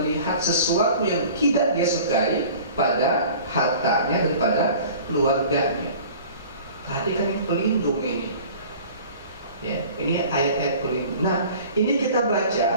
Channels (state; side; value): inverted; both; correlation -0.44